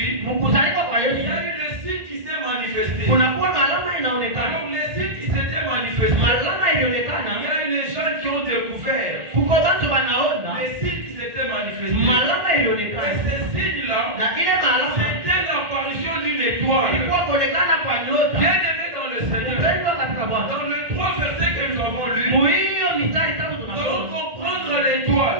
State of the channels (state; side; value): late; left; 1.5 ms